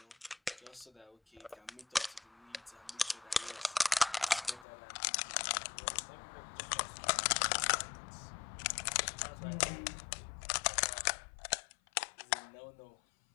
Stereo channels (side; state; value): right; drops out; at 4.7 s